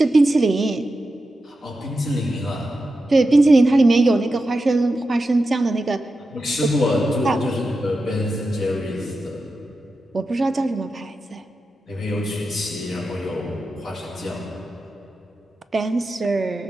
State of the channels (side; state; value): both; normal; correlation 0.91